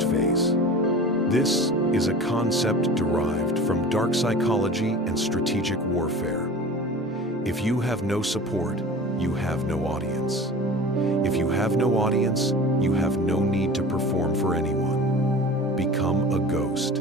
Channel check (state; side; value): normal; both; correlation 0.38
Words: phase. This is a concept derived from dark psychology and strategic warfare. If you have no support, you have no audience. If you have no audience, you have no need to perform for anyone. Become a